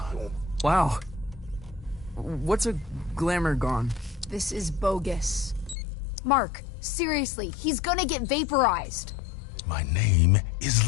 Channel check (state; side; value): drops out; right; at 5.8 s